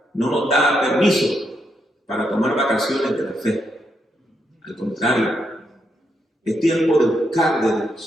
no nos da permiso para tomar vacaciones de la fe. Al contrario, es tiempo de buscar de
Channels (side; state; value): both; normal; correlation 0.80